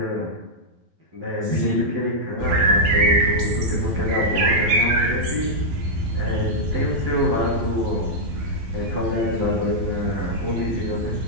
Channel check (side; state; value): left; late; 12 ms